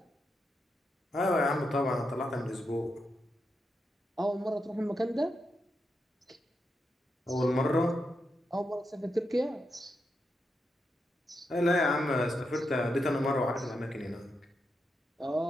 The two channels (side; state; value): both; normal; correlation 0.85